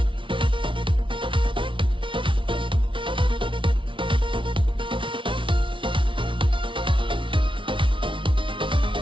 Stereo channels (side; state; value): left; late; 0.25 ms